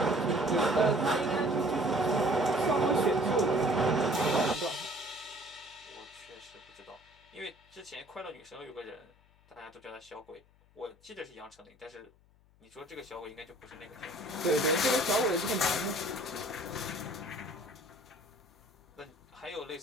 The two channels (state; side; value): noise; left; hum, 30 dB below the sound